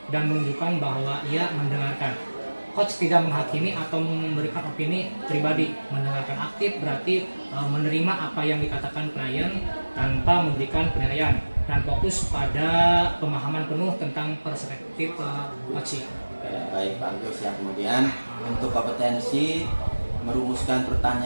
dan menunjukkan bahwa ia mendengarkan. Coach tidak menghakimi atau memberikan opini pribadi. Mendengarkan aktif berarti menerima apa yang dikatakan klien tanpa memberikan penilaian dan fokus pada pemahaman penuh tentang perspektif coachee. Baik Pak Agus, ya. Kemudian untuk kompetensi merumuskan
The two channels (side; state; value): both; inverted; correlation -1.00